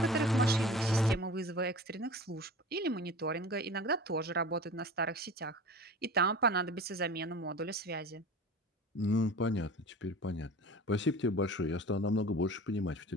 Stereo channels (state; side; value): normal; both; correlation 0.38